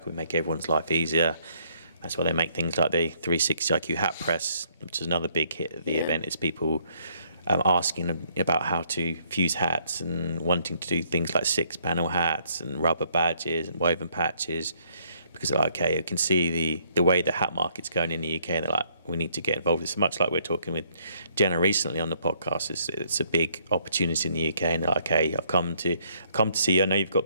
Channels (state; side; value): inverted; both; correlation -0.68